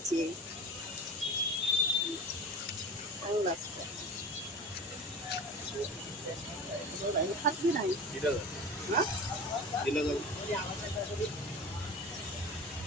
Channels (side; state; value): both; normal; correlation 0.34